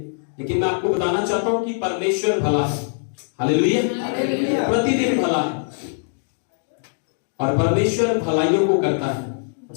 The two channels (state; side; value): silent; right; digital silence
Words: लेकिन मैं आपको बताना चाहता हूं कि परमेश्वर भला है। हालेलुया। प्रतिदिन भला है और परमेश्वर भलाइयों को करता है।